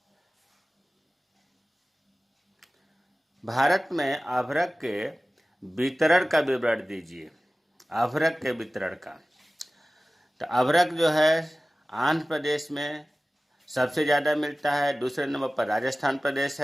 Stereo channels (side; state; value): both; normal; correlation 0.97